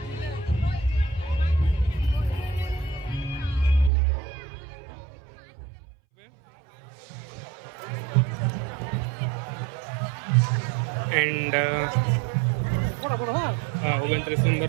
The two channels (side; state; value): left; drops out; at 3.9 s